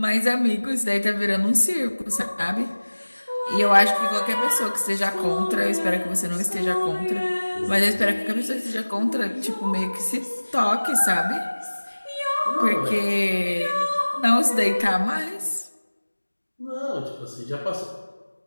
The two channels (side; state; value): both; inverted; correlation -1.00